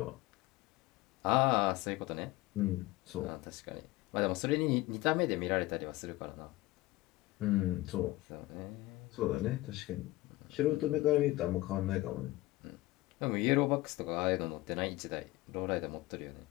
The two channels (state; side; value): quieter; right; 18.8 dB